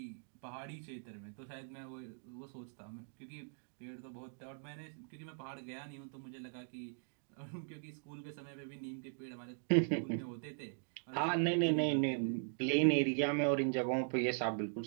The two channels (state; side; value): silent; left; digital silence